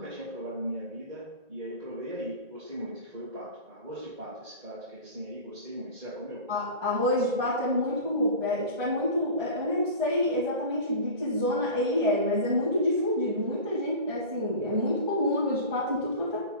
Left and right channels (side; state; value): left; late; 1.9 ms